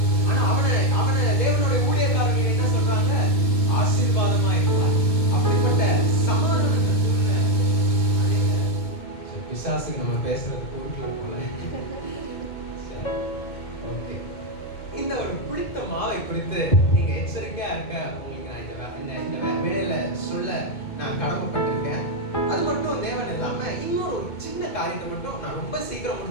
ஆனா அவனை தேவனுடைய ஊழியக்காரர்கள் என்ன சொல்றாங்க? ஆசீர்வாதமா இருப்பார். அப்படிப்பட்ட சமாதானத்தை சொல்ற பிசாசுக்கு நம்ம பேசுறது கூட்டுல போல. ஓகே, இந்த ஒரு புளித்த மாவை குறித்து நீங்க எச்சரிக்கையா இருக்க உங்களுக்கு நான் இந்த வேலையில சொல்ல நான் கடமைப்பட்டிருக்கேன். அது மட்டும் தேவன் இல்லாம இன்னொரு சின்ன காரியத்தை மட்டும் நான் ரொம்ப சீக்கிரம்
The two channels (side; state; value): right; late; 2.2 ms